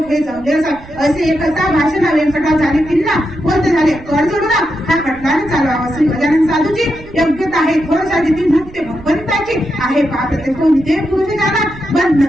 हे जमले असे एकता भाषण व्यंकटा झाले किल्ला कोणते झाले कर जोडून हा खटल्याने चालवावा श्री गजानन साधूची योग्यता आहे थोडसा जिथे मुक्ते भगवंताची आहे पाहते तो विधेय पुरुष झाला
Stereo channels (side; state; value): right; noise; rumble, 20 dB below the sound